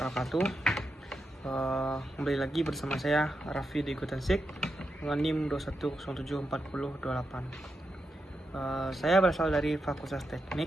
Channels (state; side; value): normal; both; correlation 0.86